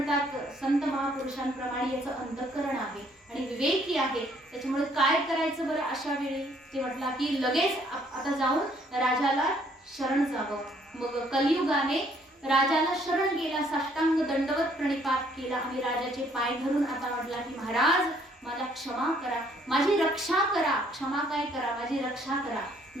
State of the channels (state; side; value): normal; both; correlation 0.64